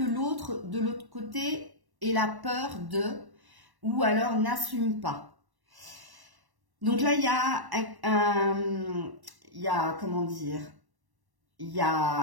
l'autre, de l'autre côté, ait la peur de ou alors n'assume pas. Donc là, il y a comment dire, il y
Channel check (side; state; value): left; late; 1.1 ms